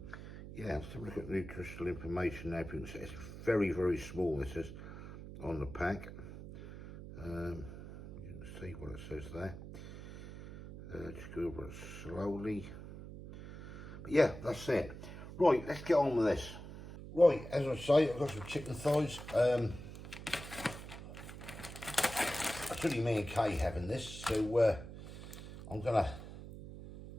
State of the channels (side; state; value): right; noise; hum, 12 dB below the sound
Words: let's have a look at nutritional information now. You can see it's very, very small, this is, on the pack. You can see what it says there. Just go over it slowly. But yeah, that's it. Right, let's get on with this. Right, as I say, I've got some chicken thighs. It's only me and Kay having this, so I'm gonna